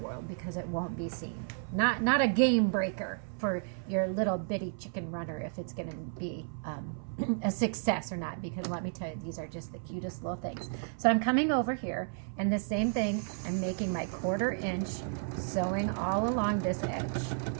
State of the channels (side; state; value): left; silent; 56 dB below the other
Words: because it won't be seen. Not a game breaker for your little bitty chicken runner if it's going to be a success or not, because let me tell you, these are just the cutest little things. So I'm coming over here and the same thing, I'm making my 1/4 inch, sewing all along this edge.